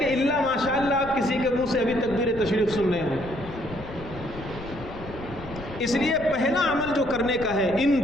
الا ماشاءاللہ آپ کسی کے منہ سے ابھی تکبیر تشریف سن رہے ہوں۔ اس لیے پہلا عمل جو کرنے کا ہے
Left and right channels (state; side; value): noise; left; rumble, 13 dB below the sound